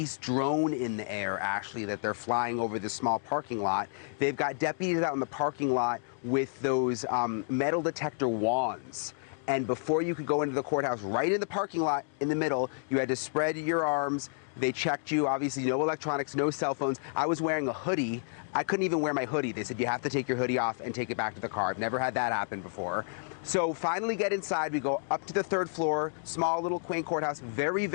drone in the air, actually, that they're flying over the small parking lot. They've got deputies out in the parking lot with those metal detector wands. And before you could go into the courthouse, right in the parking lot in the middle, you had to spread your arms. They checked you, obviously no electronics, no cell phones. I was wearing a hoodie. I couldn't even wear my hoodie. They said you have to take your hoodie off and take it back to the car. I've never had that happen before. So finally get inside. We go up to the third floor, small little quaint courthouse, very,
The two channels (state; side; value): silent; right; digital silence